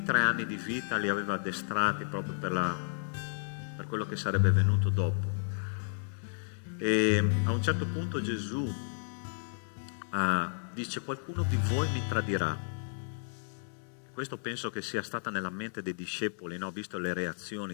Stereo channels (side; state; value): right; silent; digital silence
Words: 3 anni di vita, li aveva addestrati proprio per quello che sarebbe venuto dopo. E a un certo punto Gesù dice: qualcuno di voi mi tradirà. Questo penso che sia stata nella mente dei discepoli, no? Visto le